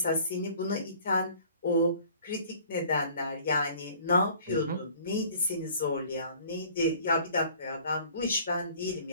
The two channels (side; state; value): both; inverted; correlation -0.52